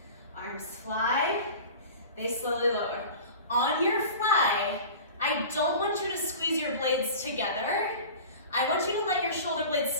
Arms fly, they slowly lower. On your fly, I don't want you to squeeze your blades together. I want you to let your shoulder blades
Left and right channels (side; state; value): both; inverted; correlation -0.37